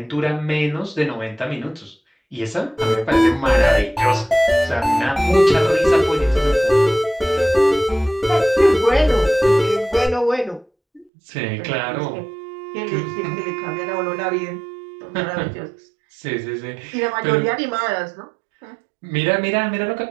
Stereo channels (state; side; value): drops out; left; at 11.1 s